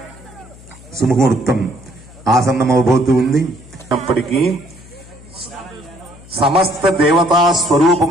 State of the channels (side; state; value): left; noise; hum, 21 dB below the sound